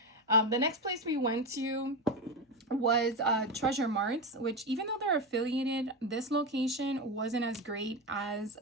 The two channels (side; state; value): both; normal; correlation 0.15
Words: The next place we went to was Treasure Marts, which, even though they're affiliated, this location wasn't as great as